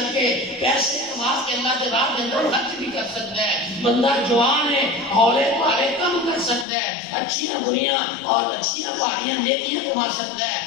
کے پیسے کما کے اللہ کے راہ کے اندر خرچ بھی کر سکتا ہے۔ بندہ جوان ہے، ہولے پارے کم کر سکتا ہے، اچھیاں بریاں اور اچھیاں پہاڑیاں نیکیاں کما سکتا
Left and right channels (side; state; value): right; drops out; at 6.7 s